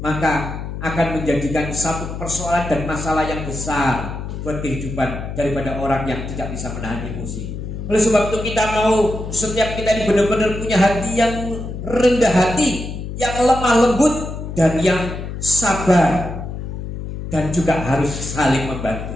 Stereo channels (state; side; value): noise; left; hum, 7 dB below the sound